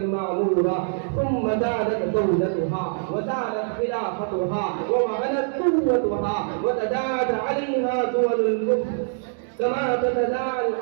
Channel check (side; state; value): left; silent; digital silence